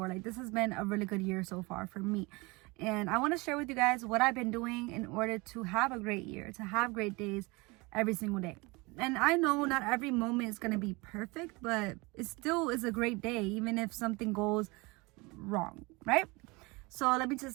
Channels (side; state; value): left; quieter; 25.5 dB